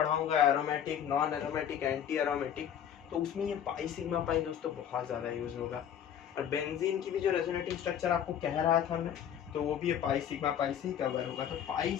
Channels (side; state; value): right; quieter; 9.3 dB